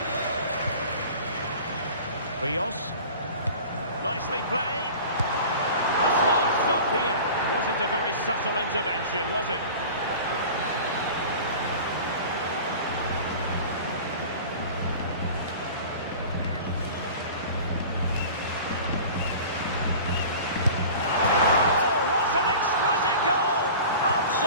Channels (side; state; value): both; inverted; correlation -0.39